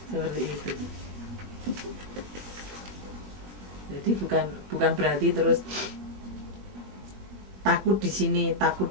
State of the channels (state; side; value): late; left; 21 ms